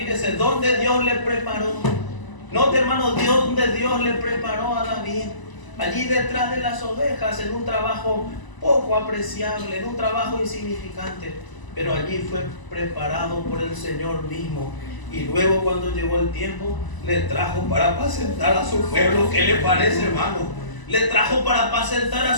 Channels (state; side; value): late; right; 1.0 ms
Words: dónde Dios le preparó. Note, hermano, donde Dios le preparó a David. Allí detrás de las ovejas, en un trabajo poco apreciable, en un trabajo insignificante. Pero allí fue preparado por el Señor mismo. Y luego, cuando llegó el tiempo, le trajo para apacentar a su pueblo. ¿Qué le parece, hermano? Le trajo para apacentar a